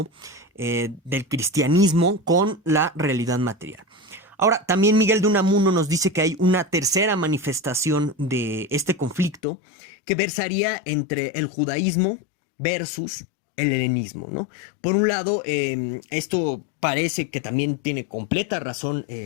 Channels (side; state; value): right; drops out; at 9.4 s